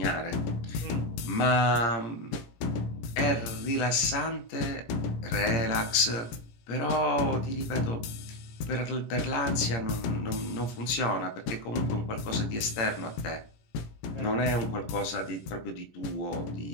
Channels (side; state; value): right; late; 17 ms